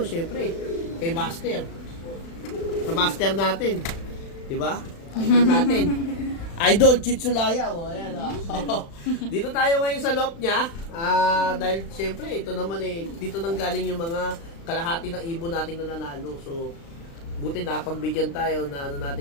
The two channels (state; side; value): late; right; 36 ms